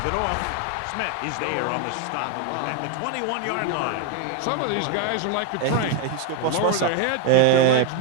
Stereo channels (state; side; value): different; both; correlation 0.01